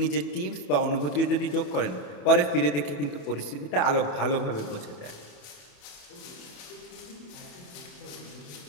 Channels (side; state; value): right; late; 28 ms